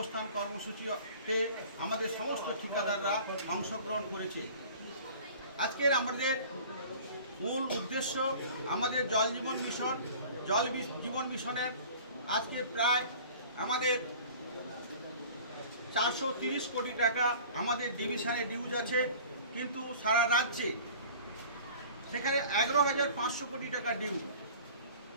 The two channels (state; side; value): inverted; both; correlation -0.44